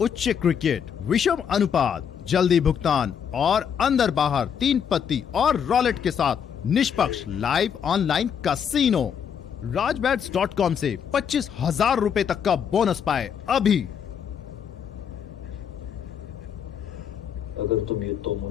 क्रिकेट, विषम अनुपात, जल्दी भुगतान और अंदर बाहर 3 पत्ती और रॉलेट के साथ निष्पक्ष लाइव ऑनलाइन कैसीनो। राजबैट्स.com से 25,000 रुपए तक का बोनस पाए अभी। अगर तुम ये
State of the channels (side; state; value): right; quieter; 7.8 dB